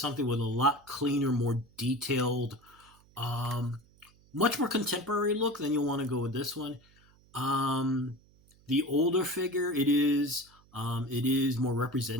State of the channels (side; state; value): right; noise; hum, 29 dB below the sound